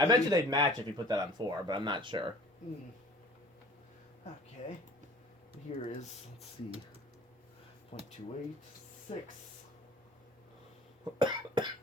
you they'd match if you put that on 4, but I'm not sure. Okay. Here is, let's see, 0.28, 6,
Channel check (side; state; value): both; normal; correlation 0.48